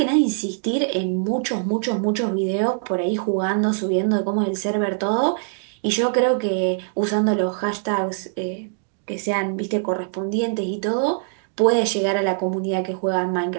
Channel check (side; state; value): left; silent; digital silence